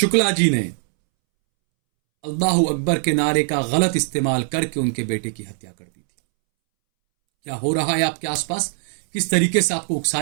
जी ने अल्लाह अकबर के नारे का गलत इस्तेमाल करके उनके बेटे की हत्या कर दी थी। क्या हो रहा है आपके आसपास, किस तरीके से आपको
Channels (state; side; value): silent; left; 65 dB below the other